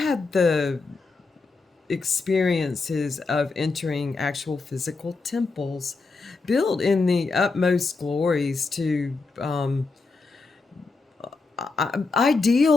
the experiences of entering actual physical temples built in the utmost glories to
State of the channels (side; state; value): right; quieter; 4.0 dB